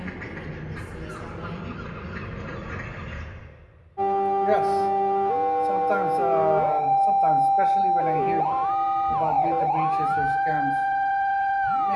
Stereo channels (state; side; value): identical; both; correlation 1.00